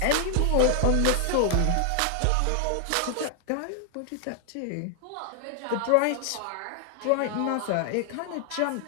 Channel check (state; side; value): different; both; correlation 0.00